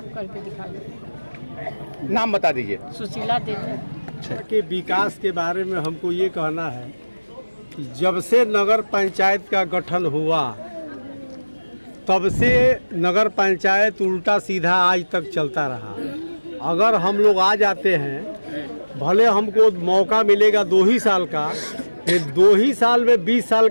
करके दिखाएंगे। नाम बता दीजिए। सुशीला देवी। के विकास के बारे में हमको ये कहना है कि जब से नगर पंचायत का गठन हुआ तब से नगर पंचायत उल्टा सीधा आज तक चलता रहा। अगर हम लोग आ जाते हैं, भले हमको मौका मिलेगा 2 ही साल का, फिर 2 ही साल में 20 साल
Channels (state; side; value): inverted; both; correlation -1.00